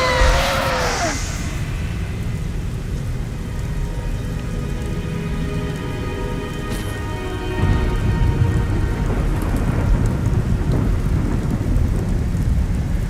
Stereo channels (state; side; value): identical; both; correlation 1.00